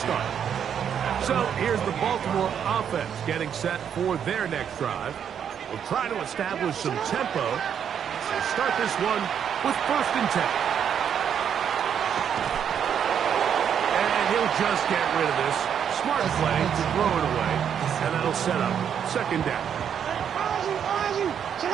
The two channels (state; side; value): quieter; left; 8.3 dB